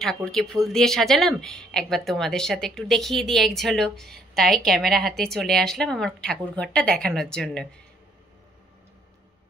ঠাকুরকে ফুল দিয়ে সাজালাম, একবার তোমাদের সাথে একটু দেখিয়ে দিই এক ঝলক। তাই ক্যামেরা হাতে চলে আসলাম আমার ঠাকুর ঘরটা দেখানোর জন্য।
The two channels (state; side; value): normal; both; correlation 0.66